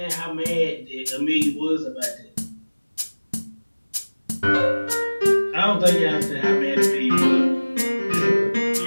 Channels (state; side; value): inverted; both; correlation -1.00